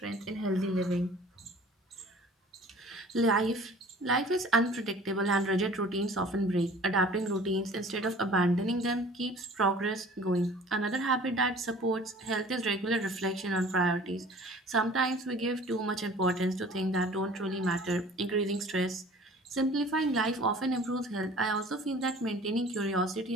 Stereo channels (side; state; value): both; normal; correlation 0.48